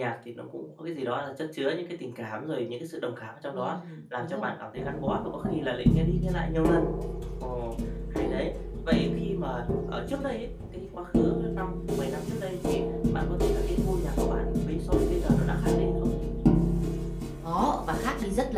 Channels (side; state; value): both; identical; correlation 1.00